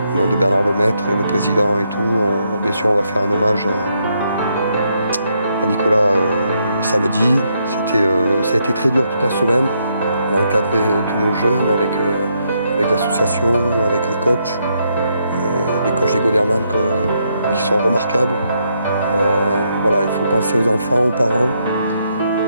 au nom de Bernard Lemaitre, le président et tout, bien sûr on va faire un hommage à Nicolas samedi. Ça a été très dur toute la semaine. On a encadré tous nos jeunes avec l'association, avec les coachs des Goderman qui sont remarquables. Voilà, il faut penser aux enfants, aux parents.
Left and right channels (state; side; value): inverted; both; correlation -0.77